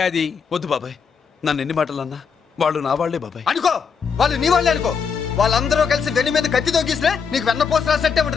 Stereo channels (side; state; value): right; quieter; 6.2 dB